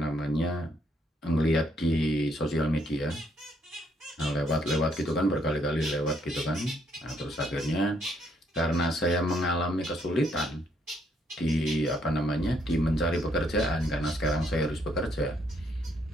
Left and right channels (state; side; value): normal; both; correlation 0.71